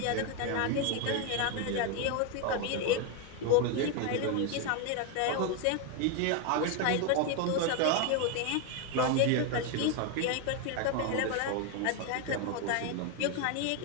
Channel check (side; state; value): both; different; correlation 0.01